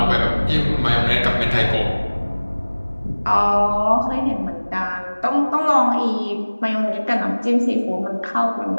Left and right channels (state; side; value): inverted; both; correlation -1.00